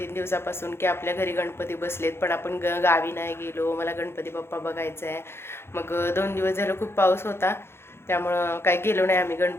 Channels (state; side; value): late; right; 0.12 ms